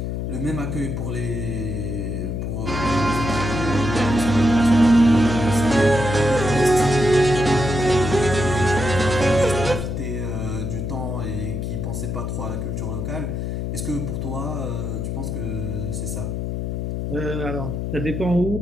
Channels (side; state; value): left; noise; hum, 3 dB below the sound